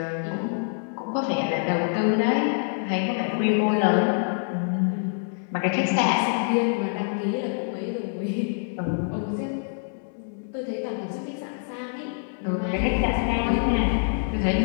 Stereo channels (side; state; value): right; silent; 61 dB below the other